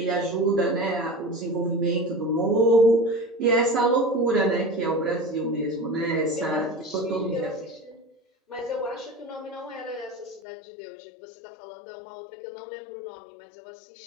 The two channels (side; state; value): right; drops out; at 10.4 s